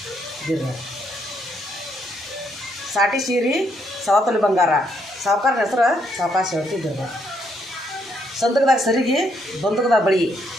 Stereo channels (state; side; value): normal; both; correlation 0.74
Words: ಇದಿರ ಸಾಟಿ ಸೀರೆ ಸವತಲಿ ಬಂಗಾರ, ಸಾವುಕಾರನ ಹೆಸರು ಸಾವಕಾಶ ಹೇಳ್ತಿ ಇದ್ದಿರ್ಬ. ಸಂದಕದಾಗ ಸರಿಗೆ, ಬಂದಕದಾಗ ಬಳಿ